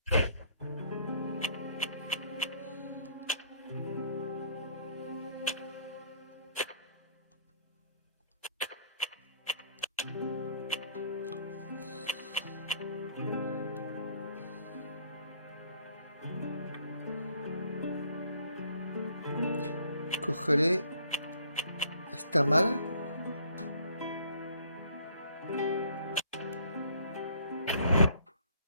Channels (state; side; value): inverted; both; correlation -0.60